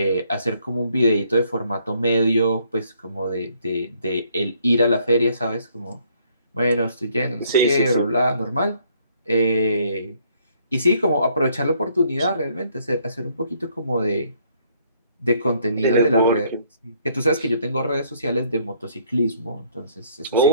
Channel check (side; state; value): both; inverted; correlation -0.66